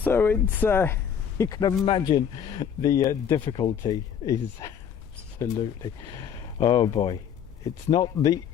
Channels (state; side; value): quieter; right; 8.2 dB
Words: it's you can imagine the difficulty is absolutely, oh boy, it's not the